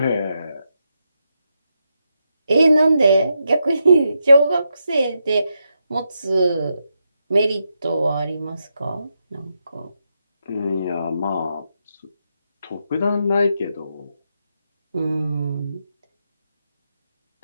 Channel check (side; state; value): both; inverted; correlation -0.84